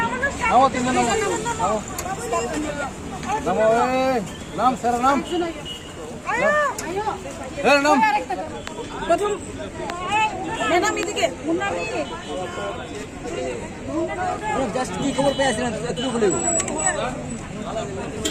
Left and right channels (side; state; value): both; identical; correlation 1.00